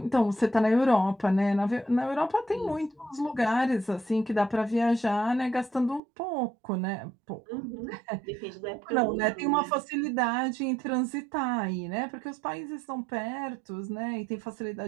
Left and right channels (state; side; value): drops out; left; at 6.0 s